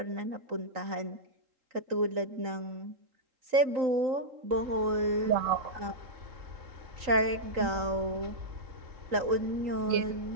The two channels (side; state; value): left; late; 3.9 ms